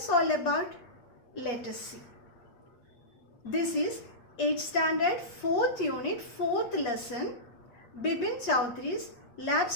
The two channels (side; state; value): right; late; 8.3 ms